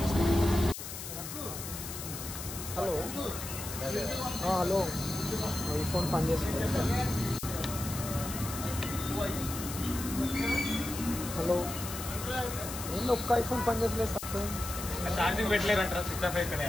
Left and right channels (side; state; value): left; noise; hiss, 8 dB below the sound